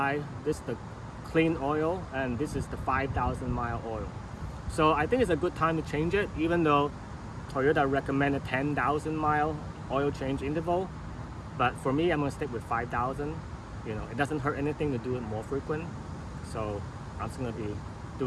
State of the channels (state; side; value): identical; both; correlation 1.00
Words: this is the clean oil and this is the 5,000 mile oil. So I think it's a good time to change it, even though Toyota recommended 10,000 mile oil change interval. But for me, I'm gonna stick with 5,000. You know, it doesn't hurt anything to do it more frequent. So I'm just gonna be